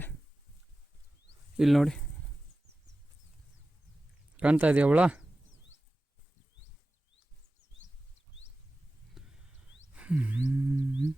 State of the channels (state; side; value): normal; both; correlation 0.95